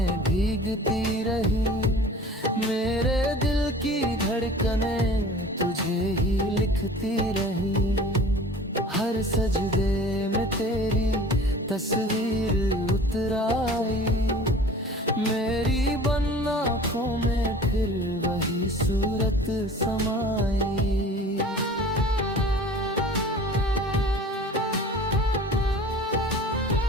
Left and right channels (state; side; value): normal; both; correlation 0.43